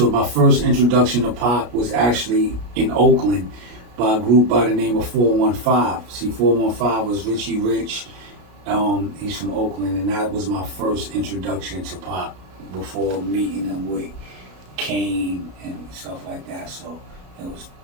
my first introduction to Pac was actually in Oakland by a group by the name of 415. See, 415 was Richie Rich. He's from Oakland, and that was my first introduction to Pac before meeting him with Kane and stuff like that. So it was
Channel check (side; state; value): left; late; 33 ms